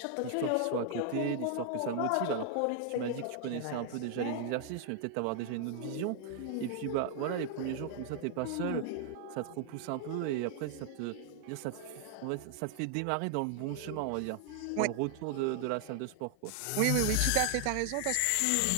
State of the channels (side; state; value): both; different; correlation 0.00